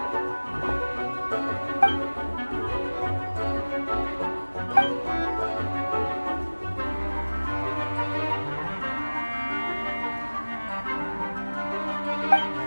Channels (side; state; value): both; inverted; correlation -1.00